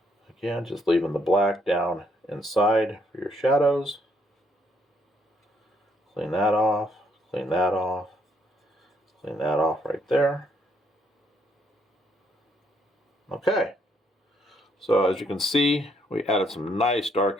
Again, just leaving the black down inside for your shadows. Clean that off, clean that off, clean that off right there. Okay, so as you can see, we added some nice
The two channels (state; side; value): normal; both; correlation 0.71